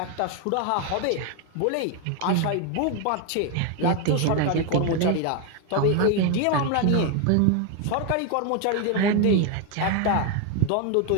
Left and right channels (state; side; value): different; both; correlation 0.01